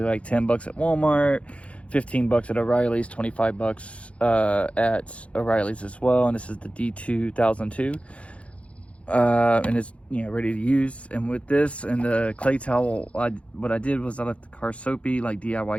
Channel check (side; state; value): right; late; 0.062 ms